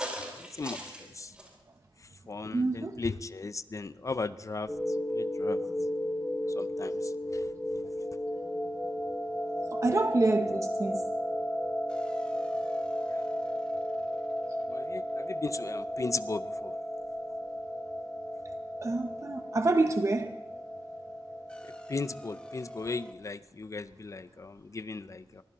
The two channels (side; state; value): both; normal; correlation 0.89